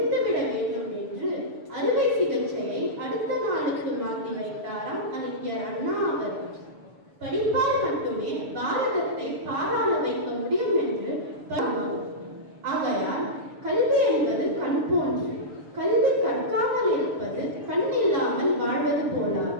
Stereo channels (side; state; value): left; late; 6.8 ms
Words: வேண்டும் என்று அறுவை சிகிச்சையை அடுத்த நாளுக்கு மாற்றி வைத்தாராம் அறிஞர் அண்ணா அவர்கள். படிப்பால் மட்டுமே பாரதத்தை பாராள வைக்க முடியும் என்று ஆகையால் கல்வி என்பது கண் போன்று. கல்வி கற்காமல் இருப்பது கண் இல்லாமல் வாழ்வது